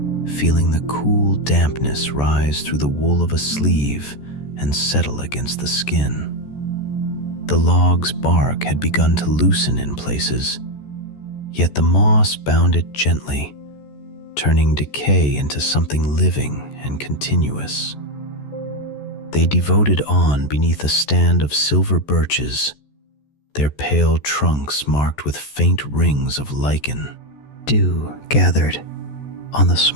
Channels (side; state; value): right; late; 14 ms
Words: feeling the cool dampness rise through the wool of a sleeve and settle against the skin. The log's bark had begun to loosen in places, yet the moss bound it gently, turning decay into something living and continuous. They devoted on beneath a stand of silver birches, their pale trunks marked with faint rings of lichen. Dew gathered on the